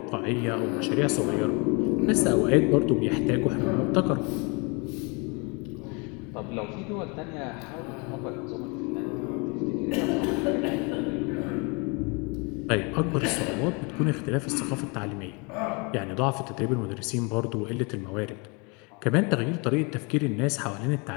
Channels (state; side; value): quieter; right; 31.0 dB